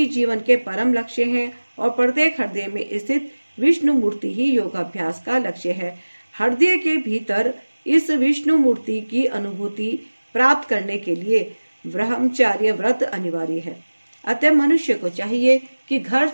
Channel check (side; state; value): both; inverted; correlation -1.00